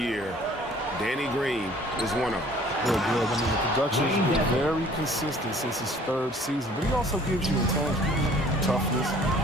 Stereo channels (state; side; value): normal; both; correlation 0.53